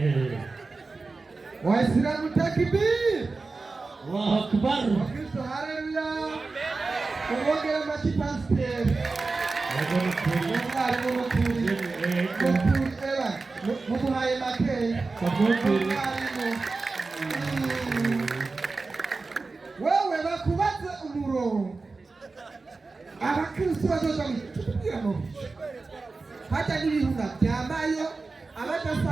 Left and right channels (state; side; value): quieter; left; 3.9 dB